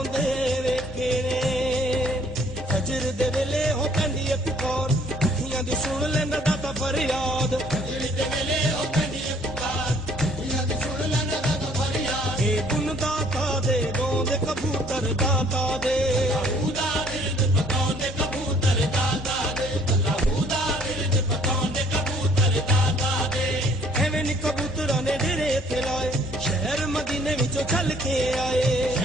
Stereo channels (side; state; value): both; normal; correlation 0.60